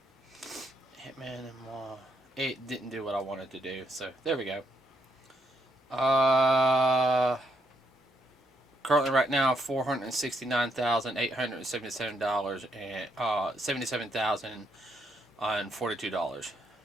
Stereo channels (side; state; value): both; normal; correlation 0.75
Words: Ant-Man and Wasp? It didn't do what I wanted to do. So there we go. Currently, right now, $469,877 and $77,042.